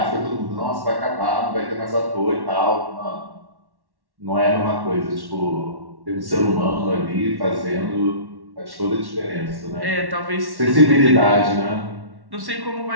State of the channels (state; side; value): late; left; 1.1 ms